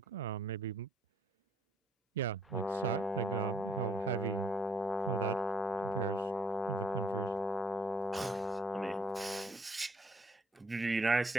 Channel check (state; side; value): normal; both; correlation 0.66